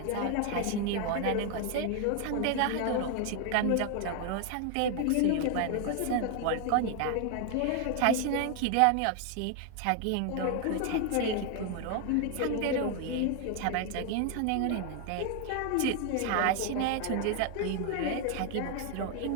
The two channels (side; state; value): both; different; correlation 0.00